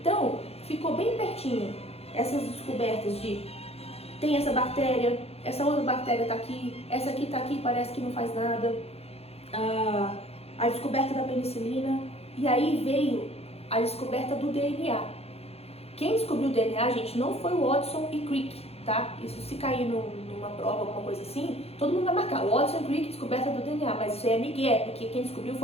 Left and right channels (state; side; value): late; right; 0.29 ms